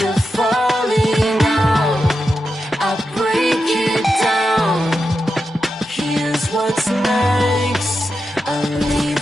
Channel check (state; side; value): normal; both; correlation 0.88